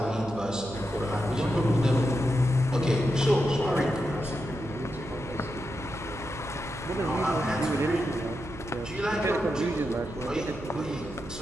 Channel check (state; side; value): noise; right; hum, 13 dB below the sound